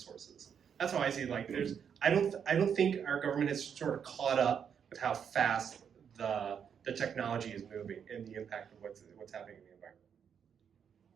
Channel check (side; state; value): left; quieter; 7.6 dB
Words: That's how I see it. I don't think our government has sort of caught up with how fast the technology is moving and the impact of what's happening in the environment.